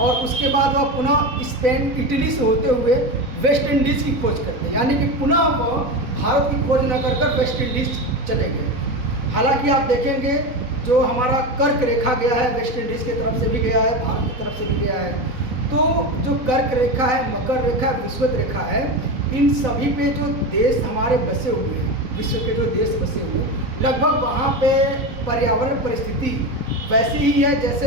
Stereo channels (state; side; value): late; left; 4.0 ms